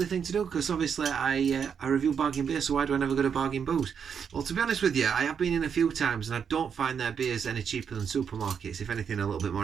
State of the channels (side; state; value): left; quieter; 7.1 dB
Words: thing to do because obviously I review Bargain Beer, so why do I never go to Bargain Booze? Well, to be honest with you, I have been in a few times and I don't find their beers any cheaper than supermarkets. If anything, a little bit